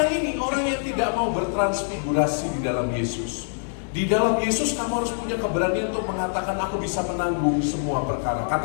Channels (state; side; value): silent; right; digital silence